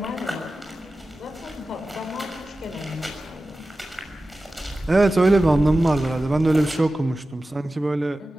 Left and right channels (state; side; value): normal; both; correlation 0.95